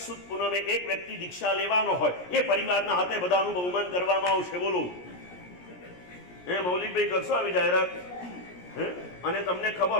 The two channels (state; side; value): late; right; 17 ms